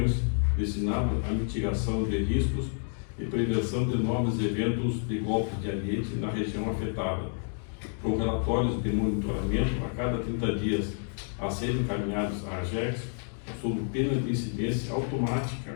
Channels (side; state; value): right; silent; 58 dB below the other